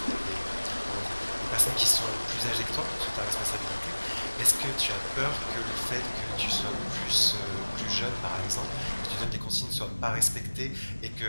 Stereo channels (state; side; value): inverted; both; correlation -1.00